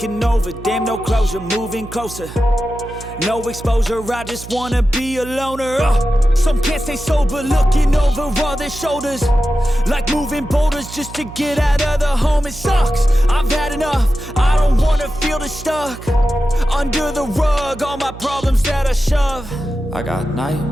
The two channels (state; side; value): noise; right; hum, 14 dB below the sound